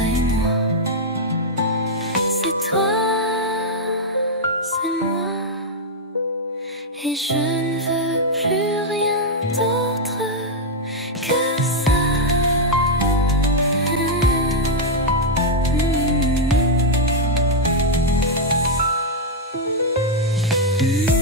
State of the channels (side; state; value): both; normal; correlation -0.02